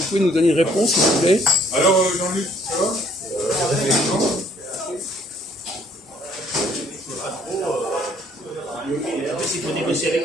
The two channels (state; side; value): normal; both; correlation 0.62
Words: pouvez nous donner une réponse, s'il vous plaît? Alors Jean-Luc, ça va? En fait, il faut négocier avec